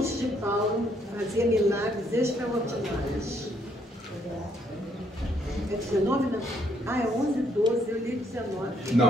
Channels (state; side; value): normal; both; correlation 0.70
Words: de Paulo, fazia milagres extraordinários. É 19, não? Ah, é 11, 12, eu li 19. Não,